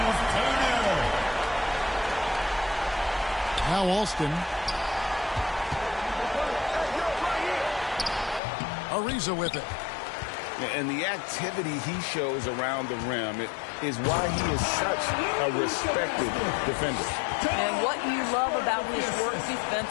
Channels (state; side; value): drops out; right; at 8.4 s